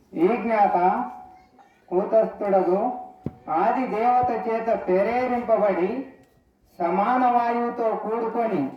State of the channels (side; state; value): both; identical; correlation 1.00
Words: ఈ జ్ఞాత కూటస్థుడగు ఆది దేవత చేత ప్రేరేరింపబడి సమాన వాయువుతో కూడుకొని